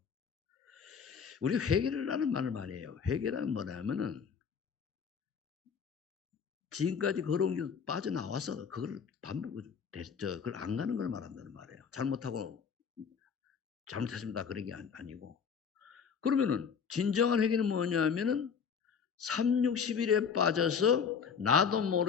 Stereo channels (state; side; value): quieter; right; 6.6 dB